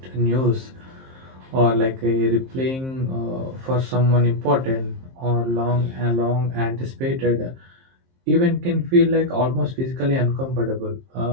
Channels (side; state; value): left; late; 23 ms